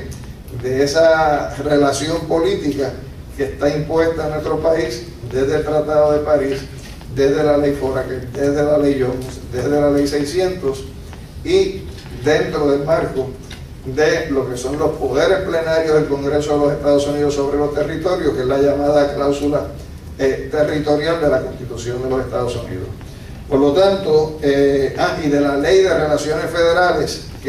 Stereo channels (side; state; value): both; identical; correlation 1.00